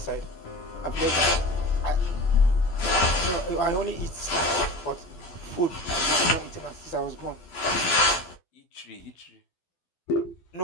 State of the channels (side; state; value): right; late; 12 ms